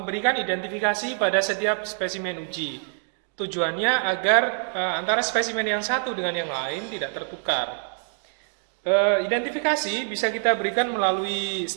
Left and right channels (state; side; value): silent; left; digital silence